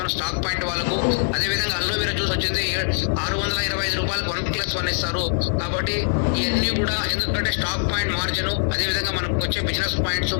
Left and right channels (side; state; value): right; silent; 64 dB below the other